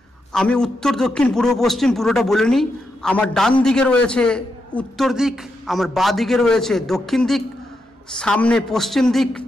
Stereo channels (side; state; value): both; normal; correlation 0.84